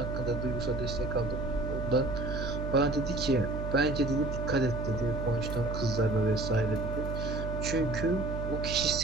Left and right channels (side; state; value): right; noise; hum, 5 dB below the sound